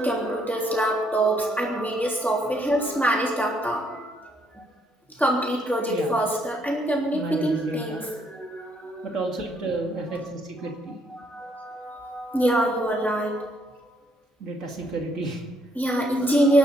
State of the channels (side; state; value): both; normal; correlation 0.70